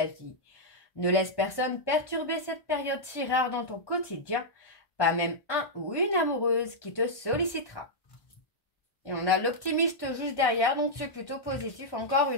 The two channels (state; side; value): late; right; 1.1 ms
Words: vie. Ne laisse personne perturber cette période si rare dans ton quotidien, pas même un ou une amoureuse qui te sollicitera. Et on a l'optimiste juste derrière, donc c'est plutôt positif encore